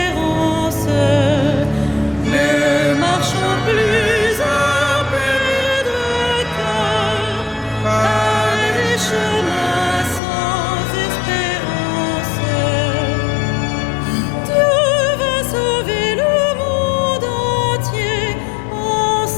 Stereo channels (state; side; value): drops out; right; at 10.2 s